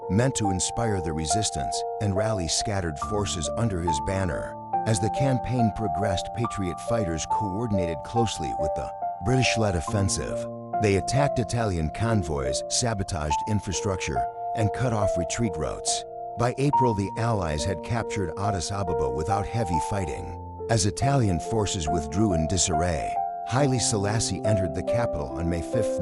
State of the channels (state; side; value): identical; both; correlation 1.00